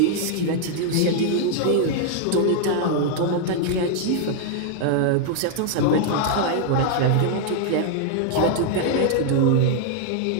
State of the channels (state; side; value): different; both; correlation 0.00